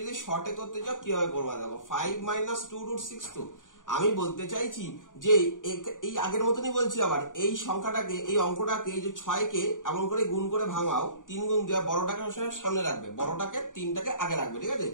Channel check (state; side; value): late; right; 0.88 ms